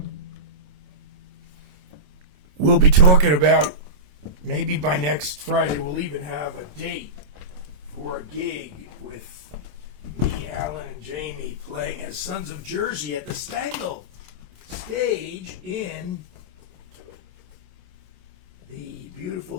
We'll be talking about, maybe by next Friday, we'll even have a date for a gig with me, Alan, and Jamie playing as Sons of Jersey at the Stengel stage in the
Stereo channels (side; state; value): left; late; 26 ms